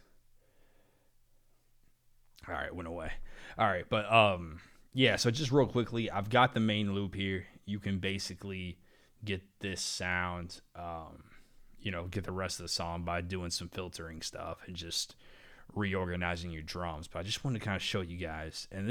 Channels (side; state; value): both; identical; correlation 1.00